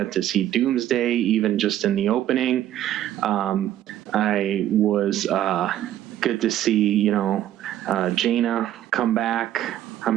to see Doomsday, even just in the opening. I was good to see, Jaina come back. I'm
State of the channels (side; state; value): left; quieter; 12.2 dB